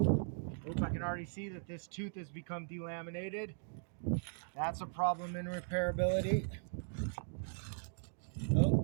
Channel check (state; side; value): silent; left; digital silence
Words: I can already see that this tooth has become delaminated. That's a problem in repairability.